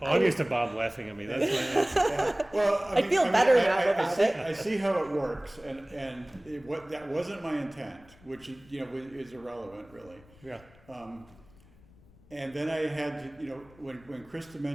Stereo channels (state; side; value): noise; left; rumble, 26 dB below the sound